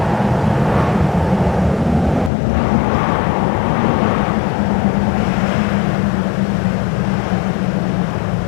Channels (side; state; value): right; drops out; at 2.3 s